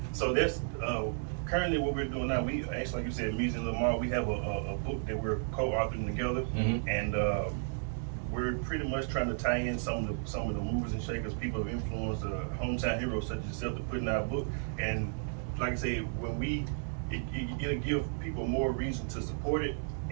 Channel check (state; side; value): silent; left; digital silence